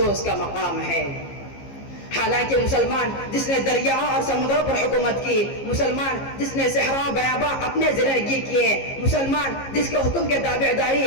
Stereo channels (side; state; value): right; late; 15 ms